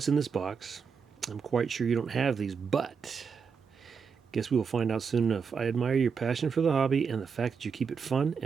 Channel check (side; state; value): left; quieter; 6.0 dB